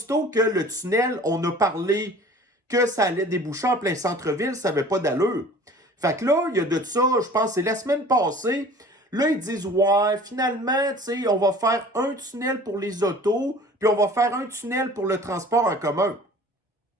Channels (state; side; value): normal; both; correlation 0.46